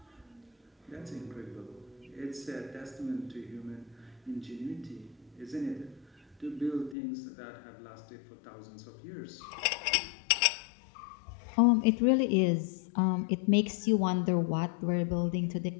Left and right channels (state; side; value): drops out; right; at 7.0 s